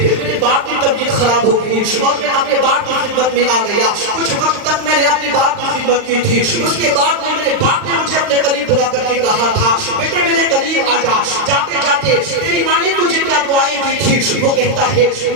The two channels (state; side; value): late; left; 39 ms